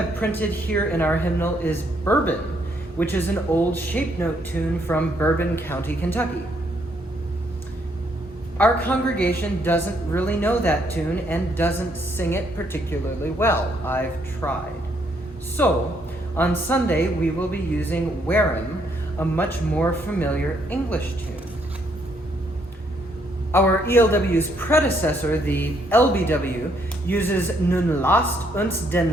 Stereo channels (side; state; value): both; normal; correlation 0.71